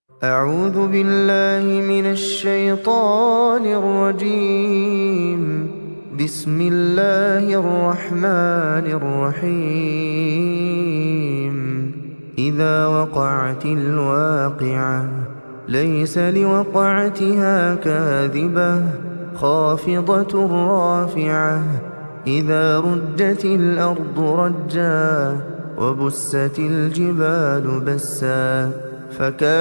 أعوذ بالله من الشيطان الرجيم. بسم الله الرحمن الرحيم. إذا وقعت الواقعة ليس لوقعتها كاذبة خافضة رافعة. إذا رجت الأرض رجا وبست الجبال بسا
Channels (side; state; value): both; inverted; correlation -1.00